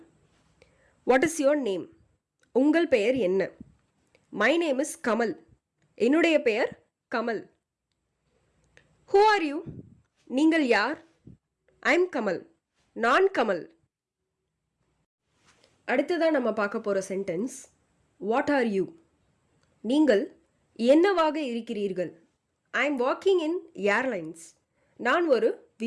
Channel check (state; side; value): identical; both; correlation 1.00